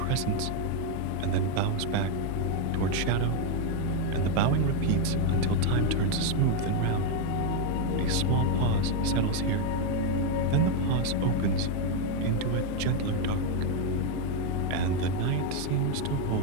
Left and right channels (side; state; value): both; different; correlation 0.01